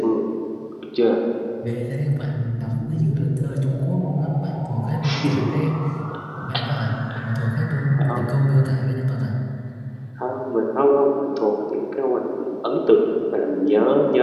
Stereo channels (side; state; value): both; identical; correlation 1.00